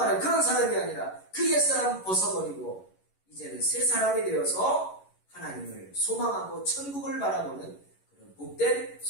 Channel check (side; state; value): right; late; 11 ms